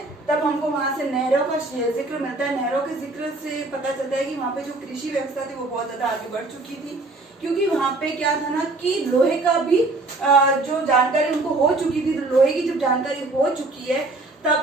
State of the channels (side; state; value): left; quieter; 3.1 dB